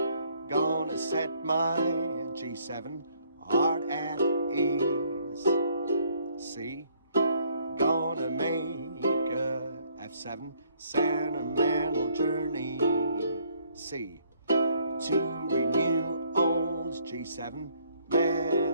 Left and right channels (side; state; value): both; inverted; correlation -0.65